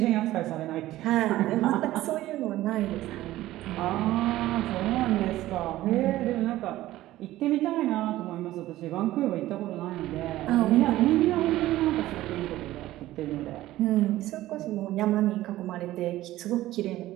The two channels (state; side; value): quieter; left; 15.6 dB